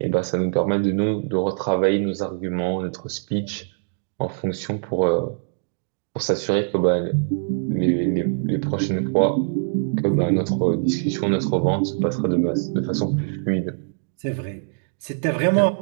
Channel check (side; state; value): left; silent; digital silence